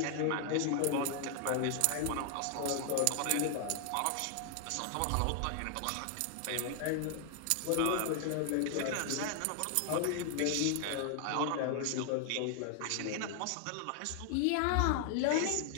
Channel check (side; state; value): both; different; correlation 0.00